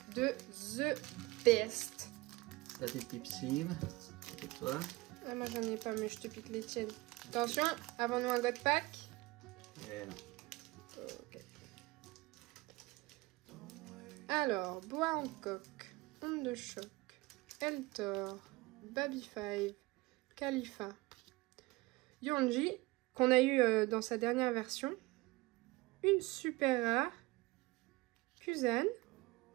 de The Best. La petite Pipsime, c'est toi. Ah, moi j'en ai pas mais je te pique les tiennes. Attention, avant nous un God Pack. Et non. Okay. Alors, Bois Hancock, Onde de Choc, Eltor, Baby 5, Khalifa, Yonji, qu'on a eu dans sa dernière version, une super rare, Kuzan,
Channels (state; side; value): quieter; left; 21.9 dB